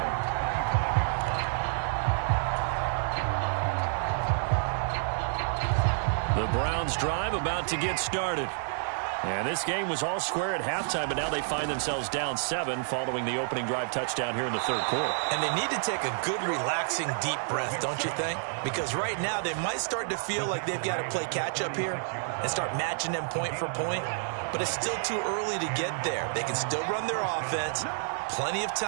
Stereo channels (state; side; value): silent; left; 58 dB below the other